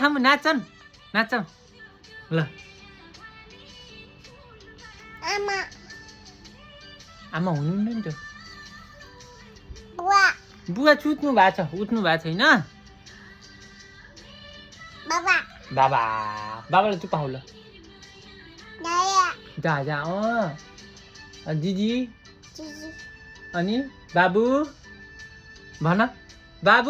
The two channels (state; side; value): identical; both; correlation 1.00